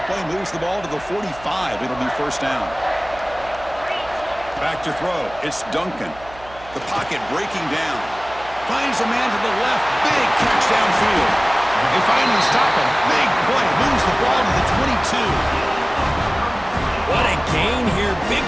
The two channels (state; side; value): noise; right; hum, 20 dB below the sound